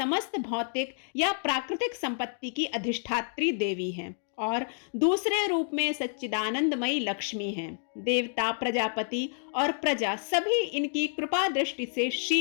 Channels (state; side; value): silent; right; 56 dB below the other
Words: भौतिक या प्राकृतिक संपत्ति की अधिष्ठात्री देवी हैं और दूसरे रूप में सच्चिदानंदमयी लक्ष्मी हैं। देवता, प्रजापति और प्रजा सभी इनकी कृपा दृष्टि से